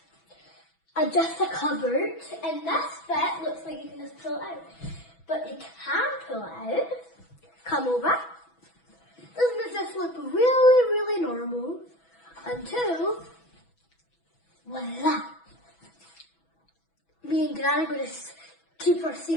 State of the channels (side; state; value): right; late; 6.1 ms